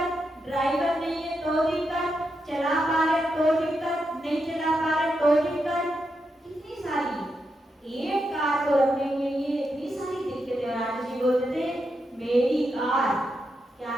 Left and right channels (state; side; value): normal; both; correlation 0.85